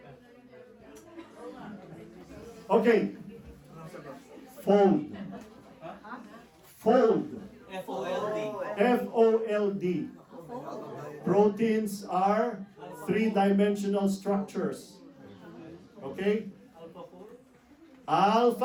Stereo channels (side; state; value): both; identical; correlation 1.00